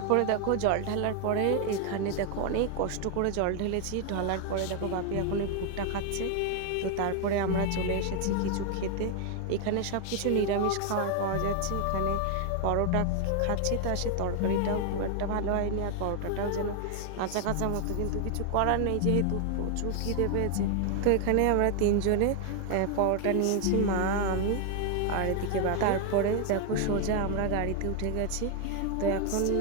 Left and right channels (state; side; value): different; both; correlation 0.00